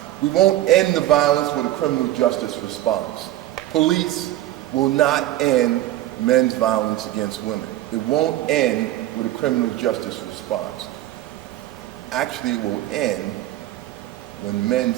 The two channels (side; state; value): left; quieter; 14.5 dB